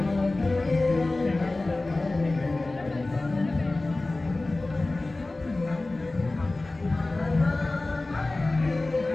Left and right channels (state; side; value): quieter; right; 3.0 dB